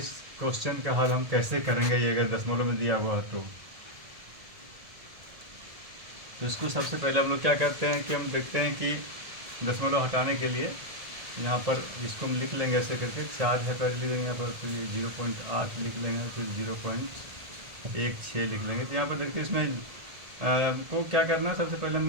क्वेश्चन का हल हम कैसे करेंगे, ये अगर दशमलव में दिया हुआ है तो इसको सबसे पहले हम लोग क्या करते हैं कि हम देखते हैं कि दशमलव हटाने के लिए यहाँ पर इसको हम लिख लेंगे ऐसे करके, 4 है पहले लिख लेंगे यहाँ पर, तो ये 0.8 लिख लेंगे, फिर 0.16 लिख लेंगे। तो यहाँ पर देखिए इसमें को क्या करना है, सबसे पहले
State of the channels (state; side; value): late; left; 1.7 ms